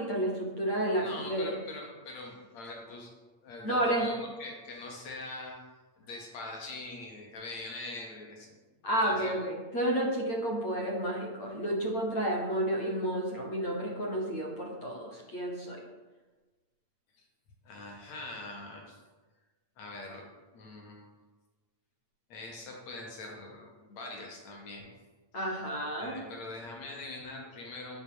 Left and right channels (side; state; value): right; late; 8.7 ms